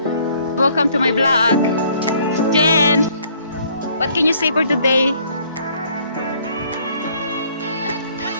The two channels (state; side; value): inverted; both; correlation -0.61